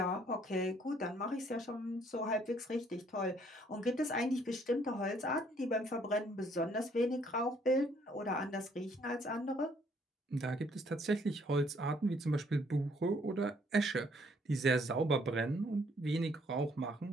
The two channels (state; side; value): normal; both; correlation 0.65